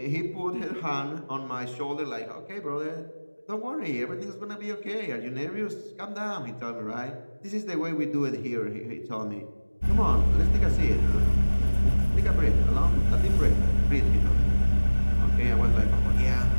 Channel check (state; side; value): inverted; both; correlation -1.00